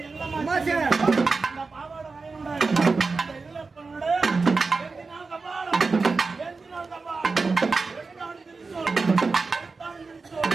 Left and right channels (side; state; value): left; quieter; 4.2 dB